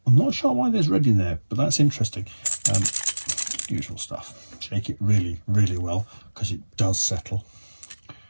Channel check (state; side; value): inverted; both; correlation -1.00